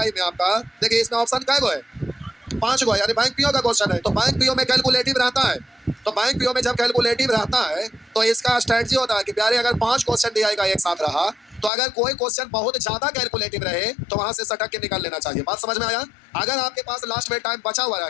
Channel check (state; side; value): drops out; right; at 11.7 s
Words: में आपका देखिए इसमें ऑप्शन कै गो है, 5 गो है, यानी बैंक PO का क्वेश्चन है। तो बैंक PO में कैलकुलेटिव रहता है। तो बैंक PO में जब कैलकुलेटिव रहता है तो इसका स्ट्रेटजी होता है कि प्यारे अगर 5 क्वेश्चन DI का एक साथ रहा तो अगर कोई क्वेश्चन बहुत ज्यादा कैलकुलेटिव रहे तो वहां से सटक के निकाल लेना चाहिए। बात समझ में आया? अगर आपके पास लास्ट में टाइम बचा हुआ रह